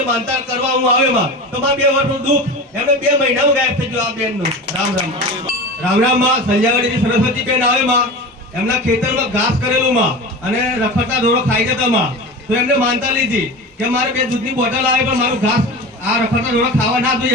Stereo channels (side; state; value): both; normal; correlation 0.30